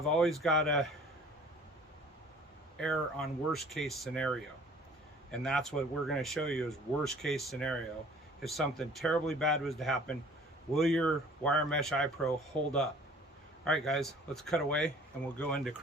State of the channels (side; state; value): both; normal; correlation 0.50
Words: always got to err on worst case scenario, and that's what we're going to show you is worst case scenario. If something terribly bad was to happen, will your wire mesh eye pro hold up? All right guys, let's cut away and we'll go into